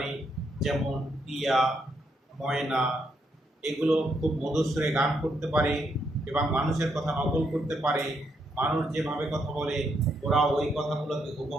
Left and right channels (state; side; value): normal; both; correlation 0.77